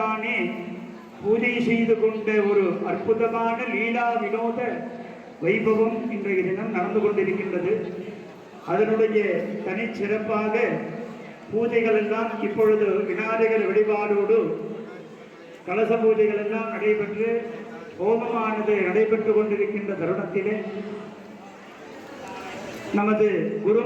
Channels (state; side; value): identical; both; correlation 1.00